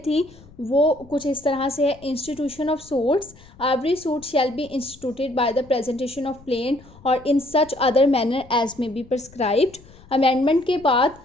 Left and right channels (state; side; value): noise; left; rumble, 24 dB below the sound